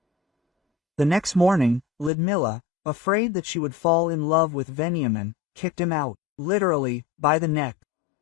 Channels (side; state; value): right; drops out; at 2.1 s